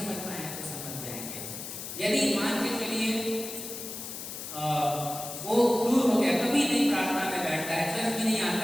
पाए तो समझ जाएंगे। यदि मान के चलिए वो दूर हो गया, कभी नहीं प्रार्थना में बैठता है, चर्च में नहीं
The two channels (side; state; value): left; noise; hiss, 8 dB below the sound